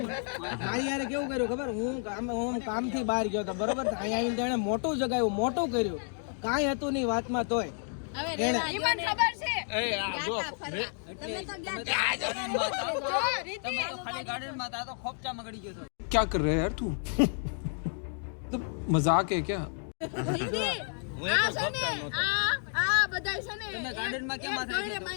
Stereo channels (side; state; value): right; silent; 57 dB below the other